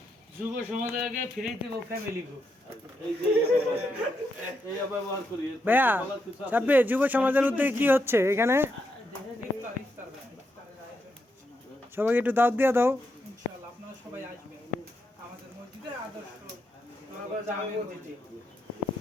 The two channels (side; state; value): both; normal; correlation 0.82